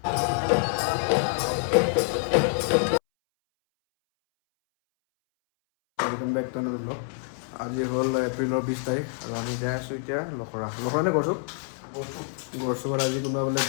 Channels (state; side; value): silent; right; 60 dB below the other